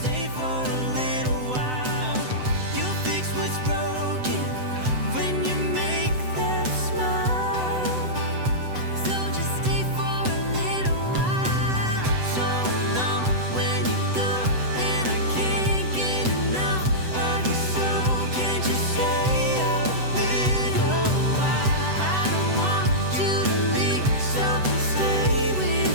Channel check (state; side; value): late; left; 7.9 ms